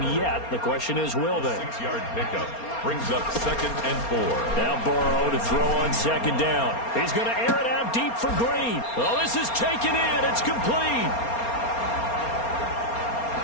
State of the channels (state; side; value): late; right; 4.3 ms